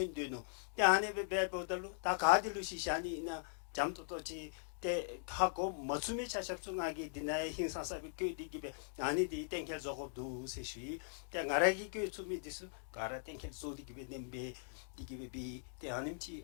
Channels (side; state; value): right; silent; digital silence